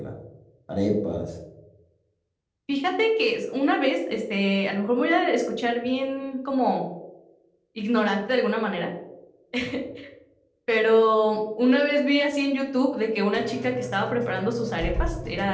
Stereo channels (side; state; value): both; identical; correlation 1.00